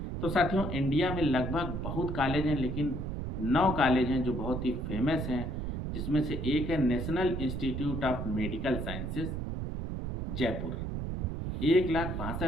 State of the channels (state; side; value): noise; right; rumble, 3 dB below the sound